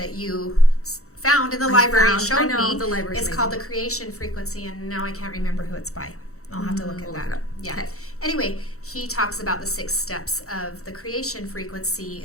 you found in the library and showed me, it's called The Creation Frequency, and now I can't remember who it's by. I'll have to look at that. Yeah. Okay. Anyway, he talks about the 6 steps of the creation frequency.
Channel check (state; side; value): late; right; 0.64 ms